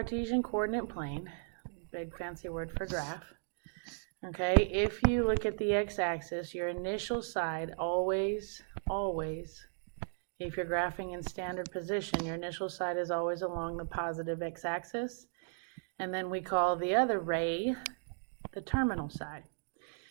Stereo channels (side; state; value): left; silent; digital silence